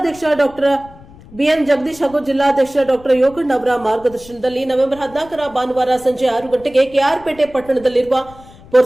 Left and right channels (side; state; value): left; noise; rumble, 22 dB below the sound